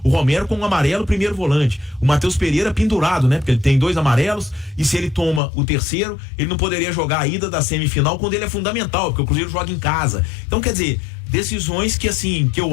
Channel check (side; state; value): right; drops out; at 5.4 s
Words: O Romero com um amarelo, primeiro volante. O Matheus Pereira pendurado, né? Porque ele tem 2 amarelos, e se ele toma o terceiro, ele não poderia jogar a ida da semifinal, quando ele é fundamental, porque o Cruzeiro joga em casa. Então, quer dizer, decisões que, assim,